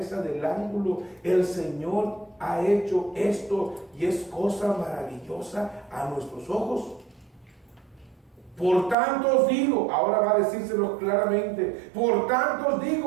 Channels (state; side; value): drops out; left; at 9.0 s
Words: del ángulo. El Señor ha hecho esto y es cosa maravillosa a nuestros ojos. Por tanto os digo, ahora va a decírselo claramente, por tanto os